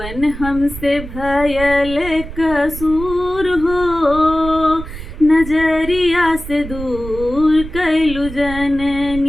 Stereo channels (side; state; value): right; noise; rumble, 11 dB below the sound